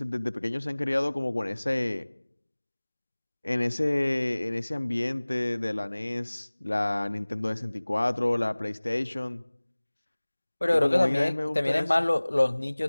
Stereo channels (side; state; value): both; inverted; correlation -1.00